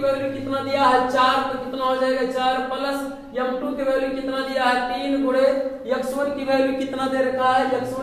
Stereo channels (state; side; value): identical; both; correlation 1.00